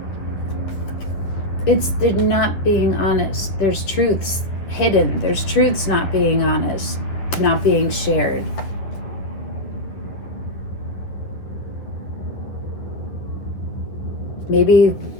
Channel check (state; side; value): late; right; 10 ms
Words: They're not being honest. There's truths hidden. There's truths not being honest, not being shared. Maybe